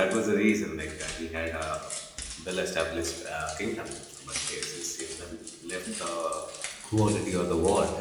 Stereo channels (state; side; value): identical; both; correlation 1.00